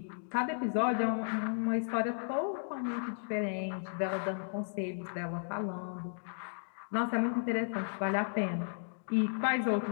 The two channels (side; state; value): right; silent; digital silence